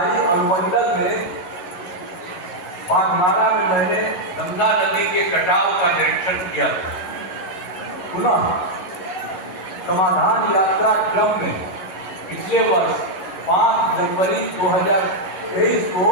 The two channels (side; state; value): right; late; 11 ms